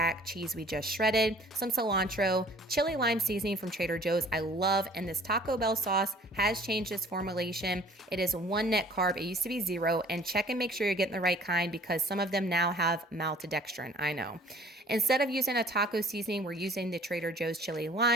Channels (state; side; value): normal; both; correlation 0.52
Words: cheese we just shredded, some cilantro, chili lime seasoning from Trader Joe's I love, and this Taco Bell sauce has changed its formulation. It is 1 net carb, it used to be 0, and check and make sure you're getting the right kind because some of them now have maltodextrin, I know. Instead of using a taco seasoning, we're using the Trader Joe's chili